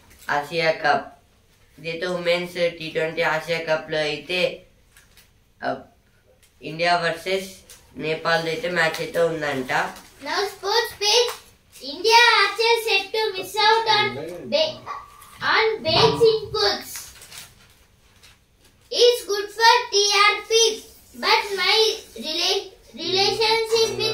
ఆసియా కప్. ఇదైతే ఉమెన్స్ T20 ఆసియా కప్ లో అయితే ఇండియా వర్సెస్ నేపాల్ అయితే మ్యాచ్ అయితే ఉందంట. Now sports page. India archers set to miss out on Bates inputs. It's good for TRP, but my relationship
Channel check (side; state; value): both; identical; correlation 1.00